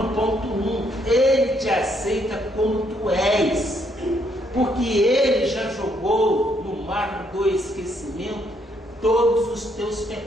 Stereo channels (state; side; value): normal; both; correlation 0.72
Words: ponto 1, Ele te aceita como tu és, porque Ele já jogou no mar do esquecimento todos os teus